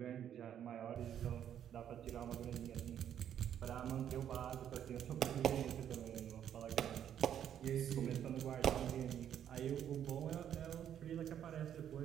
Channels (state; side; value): quieter; left; 9.7 dB